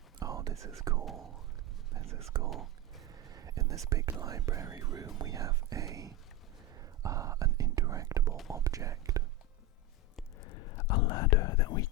this is cool. This is cool. In this big library room we have an interactable object. A ladder that we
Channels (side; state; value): both; normal; correlation 0.15